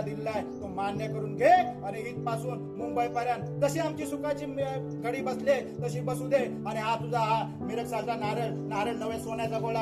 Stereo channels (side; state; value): both; identical; correlation 1.00